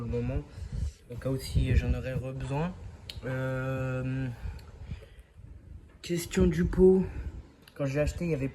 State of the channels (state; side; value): identical; both; correlation 1.00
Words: moment au cas où si j'en aurais besoin. Question du pot, quand je l'ai acheté il n'y avait